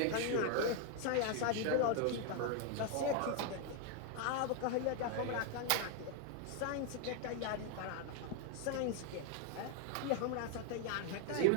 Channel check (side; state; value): both; different; correlation 0.01